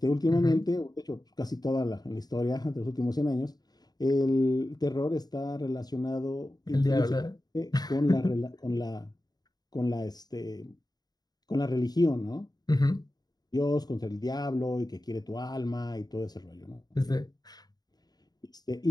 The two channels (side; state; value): right; late; 0.19 ms